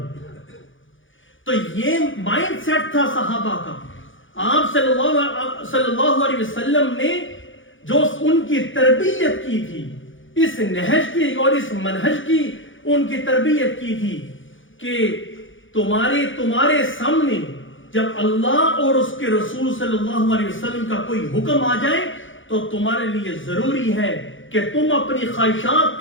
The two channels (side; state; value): right; late; 0.57 ms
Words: تو یہ مائنڈ سیٹ تھا صحابہ کا۔ آپ صلی اللہ علیہ وسلم نے جو ان کی تربیت کی تھی، اس نہج کی اور اس منہج کی ان کی تربیت کی تھی کہ تمہارے سامنے جب اللہ اور اس کے رسول صلی اللہ علیہ وسلم کا کوئی حکم آ جائے تو تمہارے لیے ضروری ہے کہ تم اپنی خواہشات